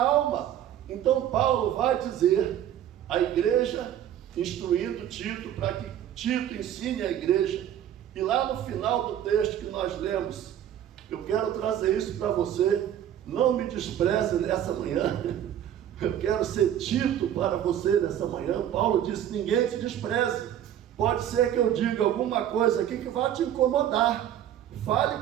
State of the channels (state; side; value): quieter; left; 10.7 dB